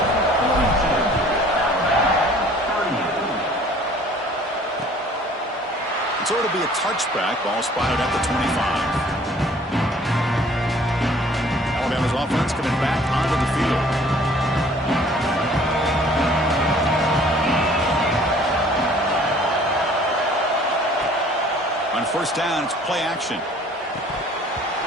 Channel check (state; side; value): normal; both; correlation 0.54